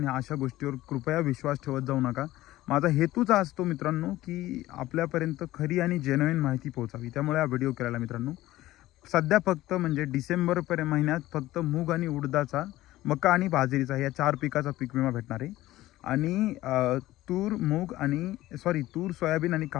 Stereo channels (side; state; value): right; quieter; 16.2 dB